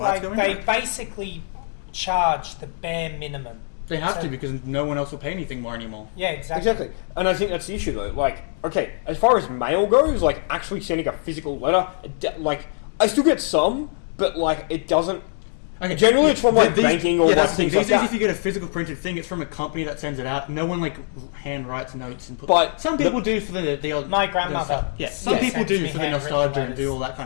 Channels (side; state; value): right; silent; 63 dB below the other